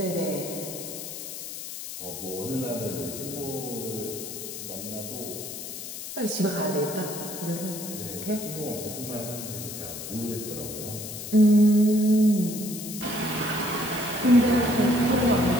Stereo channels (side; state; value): left; noise; hiss, 9 dB below the sound